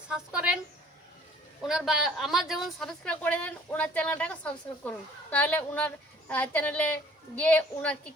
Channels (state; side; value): normal; both; correlation 0.55